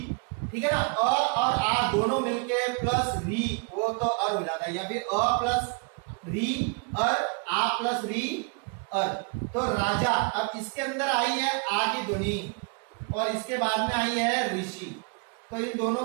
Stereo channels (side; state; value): left; quieter; 34.7 dB